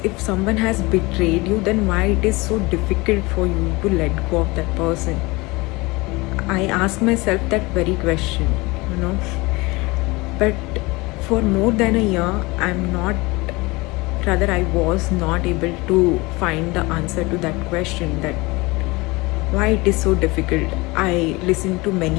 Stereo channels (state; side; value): quieter; right; 23.6 dB